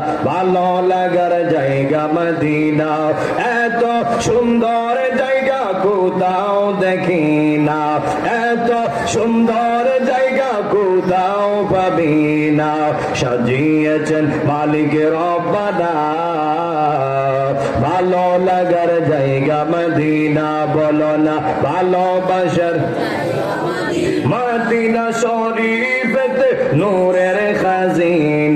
ভালো লাগার জায়গা মদিনা। এত সুন্দর জায়গা কোথাও দেখি না, এত সুন্দর জায়গা কোথাও পাবি না। সাজিয়েছেন মালিকের রব্বানা, ভালো লাগার জায়গা মদিনা, বলো না ভালোবাসার মদিনা শরীফেতে নূরের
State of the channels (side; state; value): both; identical; correlation 1.00